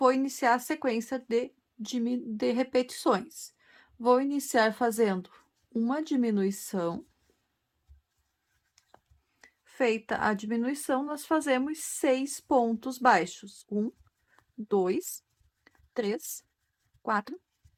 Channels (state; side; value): identical; both; correlation 1.00